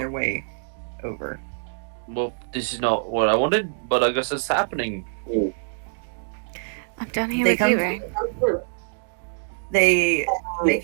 way over. Well, this is not what I wanted, but I guess it's happening. I'm done here They with come you, Ray. They make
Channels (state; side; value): silent; left; 62 dB below the other